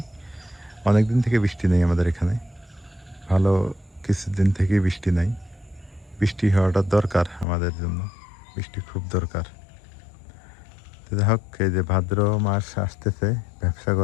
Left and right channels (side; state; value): right; drops out; at 7.5 s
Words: অনেক দিন থেকে বৃষ্টি নেই আমাদের এখানে, ভালো কিছুদিন থেকেই বৃষ্টি নাই। বৃষ্টি হওয়াটা দরকার আমাদের জন্য, বৃষ্টি খুব দরকার। তো যাই হোক, এই যে ভাদ্র মাস আসতেছে, ব্যবসা